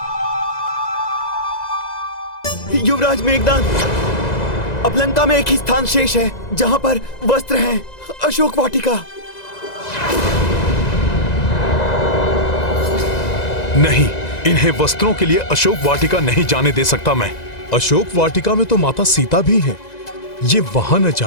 युवराज मेघनाद, अब लंका में एक ही स्थान शेष है जहाँ पर वस्त्र हैं, अशोक वाटिका। नहीं, इन्हें वस्त्रों के लिए अशोक वाटिका नहीं जाने दे सकता मैं। अशोक वाटिका में तो माता सीता भी है। ये वहां न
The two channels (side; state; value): right; late; 2.0 ms